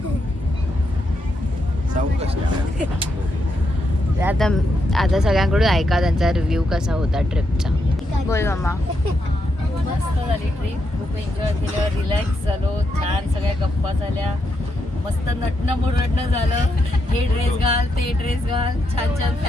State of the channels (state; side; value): normal; both; correlation 0.81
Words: आता आता सगळ्यांकडून ऐका त्यांचा रिव्ह्यू कसा होता ट्रिपचा. बोल मम्मा. मस्त झाली ट्रिप. खूप एन्जॉय केलं. रिलॅक्स झालो. छान सगळ्या गप्पा झाल्या. मस्त नटणं मुरडणं झालं. हे ड्रेस घाल ते ड्रेस घाल. छान छान